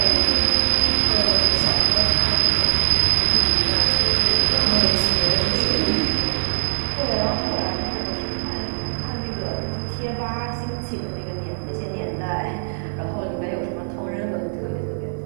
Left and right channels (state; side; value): silent; left; digital silence